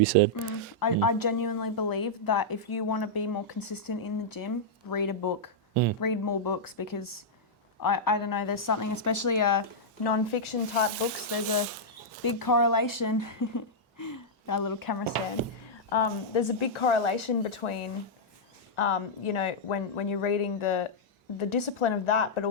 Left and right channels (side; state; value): both; normal; correlation -0.08